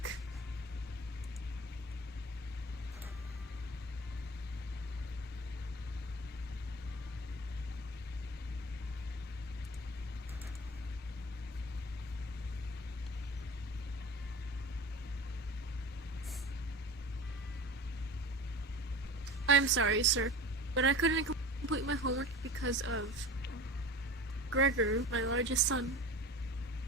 I'm sorry, sir, but I couldn't complete my homework because of Gregor, my largest son.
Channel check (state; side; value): normal; both; correlation 0.35